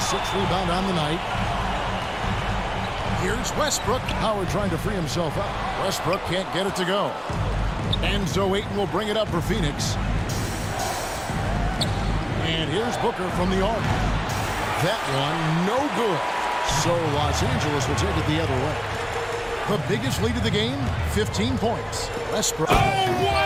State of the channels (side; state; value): both; identical; correlation 1.00